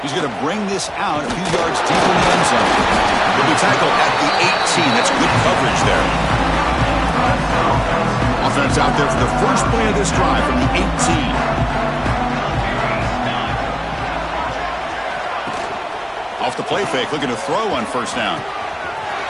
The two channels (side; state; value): both; identical; correlation 1.00